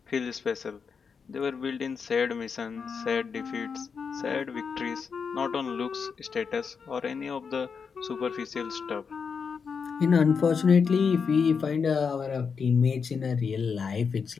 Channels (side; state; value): right; quieter; 5.9 dB